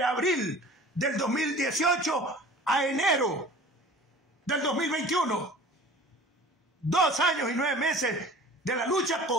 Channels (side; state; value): both; normal; correlation 0.44